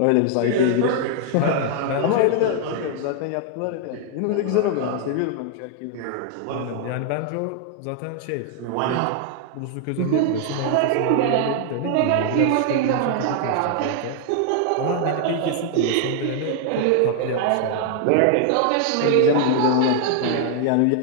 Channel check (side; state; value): both; different; correlation 0.00